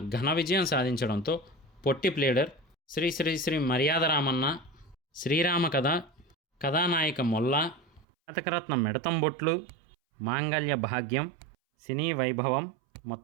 ఘన విజయం సాధించడంతో పొట్టి ప్లేడర్, శ్రీ శ్రీ శ్రీ మర్యాద రామన్న, శ్రీరామ కథ, కథానాయిక మొల్ల, కథకరత్నం మిడతంబొట్లు, మాంగళ్య భాగ్యం, సినీ వైభవం,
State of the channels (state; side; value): drops out; left; at 8.1 s